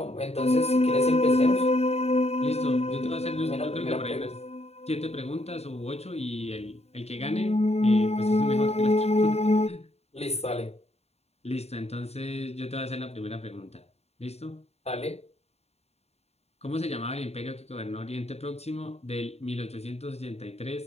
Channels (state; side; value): late; right; 0.30 ms